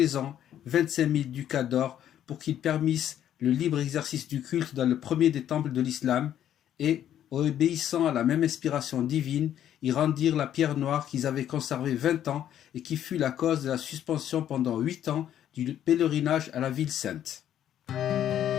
ans 25 000 ducats d'or pour qu'ils permissent le libre exercice du culte dans le premier des temples de l'islam et, obéissant à la même inspiration divine, ils rendirent la pierre noire qu'ils avaient conservée 20 ans et qui fut la cause de la suspension pendant 8 ans du pèlerinage à la ville sainte.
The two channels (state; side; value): quieter; right; 10.7 dB